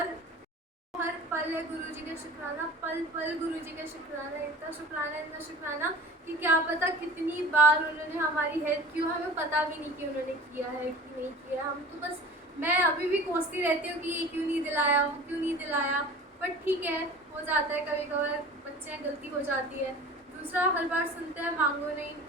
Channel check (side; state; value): both; normal; correlation 0.40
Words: हर पल है गुरुजी का शुक्राना, पल पल गुरुजी का शुक्राना, इतना शुक्राना कि क्या पता कितनी बार उन्होंने हमारी हेल्प की हो, हमें पता भी नहीं कि उन्होंने किया है कि नहीं किया। हम तो बस, मैं अभी भी कोसती रहती हूँ कि ये क्यों नहीं दिलाया, बट ठीक है, हो जाता है कभी कभार, बच्चे हैं, गलती हो जाती है। दूसरा, हर बार सुनते हैं मांगो नहीं